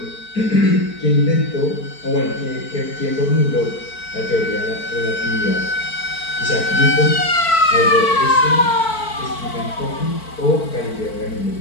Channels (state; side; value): late; right; 4.5 ms